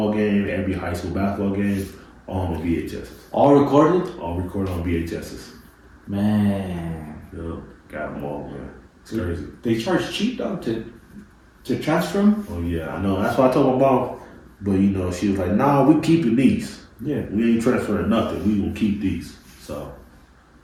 game, every high school basketball game on the VHSs. All recorded? All recorded on VHSs. Man. Yeah, got them all, man. It's crazy. They charge cheap though to transfer them? Oh yeah, I know. That's what I told my mom. But you know, she was like, "Nah, we keeping these. Yeah. We ain't transferring nothing. We gonna keep these." So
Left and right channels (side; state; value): both; identical; correlation 1.00